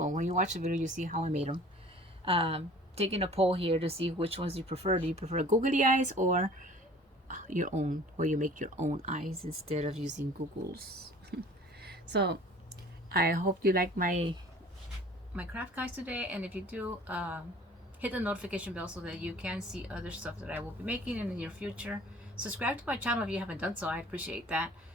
when you watch the video, you see how I made them. Taking a poll here to see which ones you prefer. Do you prefer googly eyes or your own, where you make your own eyes instead of using Google's? So I hope you like my craft guys today, and if you do, hit the notification bell so that you can see other stuff that I will be making in the near future. Subscribe to my channel if you haven't done so. I appreciate that.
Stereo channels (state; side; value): normal; both; correlation 0.48